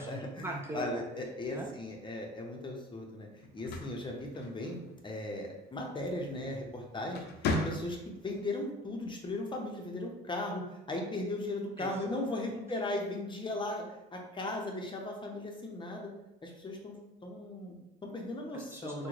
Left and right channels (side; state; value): both; normal; correlation 0.44